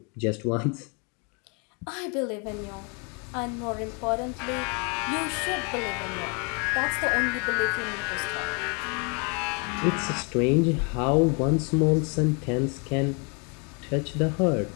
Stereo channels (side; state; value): right; quieter; 34.5 dB